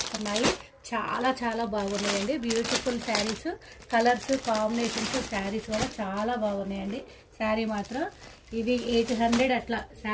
చాలా చాలా బాగున్నాయండి. Beautiful saris, colours combinations saris కూడా చాలా బాగున్నాయండి. శారీ మాత్రం ఇవి 800 అట్లా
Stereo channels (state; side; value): identical; both; correlation 1.00